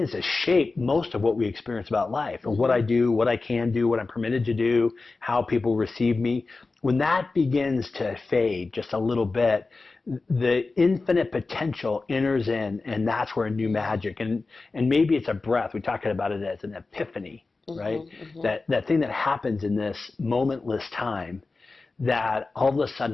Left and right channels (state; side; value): quieter; right; 3.7 dB